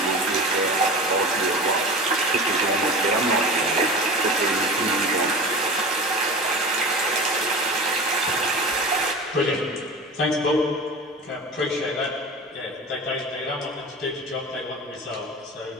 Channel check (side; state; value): both; normal; correlation 0.33